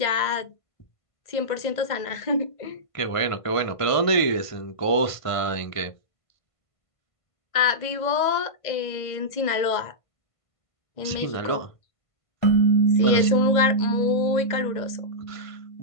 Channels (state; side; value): late; right; 1.5 ms